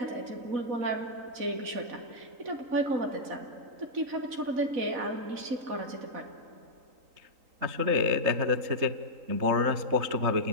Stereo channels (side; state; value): left; late; 3.8 ms